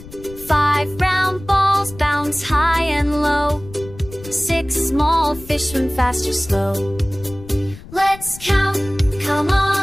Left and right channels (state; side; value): noise; left; rumble, 17 dB below the sound